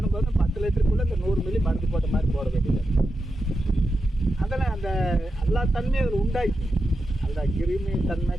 10 லிட்டருக்குள்ளே இந்த 100 மில்லி மருந்து போட்ட மாதிரி போட வேண்டியது. அதெல்லாம் அந்த எல்லா தன்மையும் அதில் உண்டாக்கி அந்த கிருமி தன்மை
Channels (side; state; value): both; normal; correlation 0.89